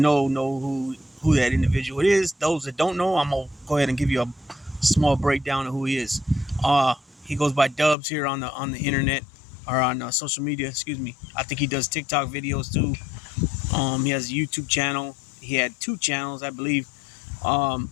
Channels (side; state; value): right; drops out; at 8.0 s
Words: who that individual is. Those that don't know, I'm gonna go ahead and give you a small breakdown of who he is. He goes by Dubs here on the internet or on social media. Excuse me. I think he does TikTok videos too. He has a YouTube channel. He had 2 channels, I believe.